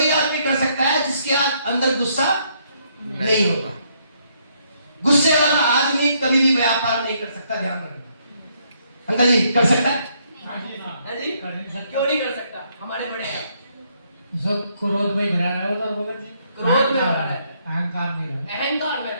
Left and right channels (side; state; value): both; inverted; correlation -0.71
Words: आदमी कर सकता है जिसके अंदर गुस्सा नहीं होता। गुस्से वाला आदमी कभी भी व्यापार नहीं कर सकता, ध्यान रखना। अंकल जी कर सकता है? हाँ जी, क्यों नहीं कर सकता? हमारे बड़े हैं सब क्रोध में भरा रहा होता है, क्रोध में भरा रहता है, अहंकार में रहता है, अहंकार में